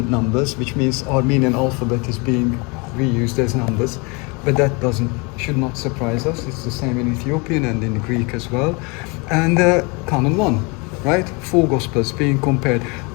numbers, which means Armenian alphabet is being reused as numbers, but that should not surprise us. It's the same in Ethiopian and in Greek as well. And Canon 1, right? 4 Gospels being compared.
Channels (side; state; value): right; quieter; 29.6 dB